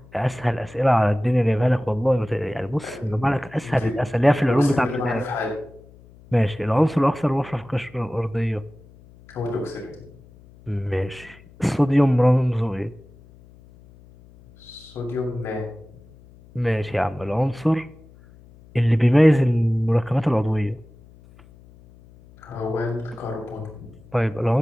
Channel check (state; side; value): noise; left; hum, 24 dB below the sound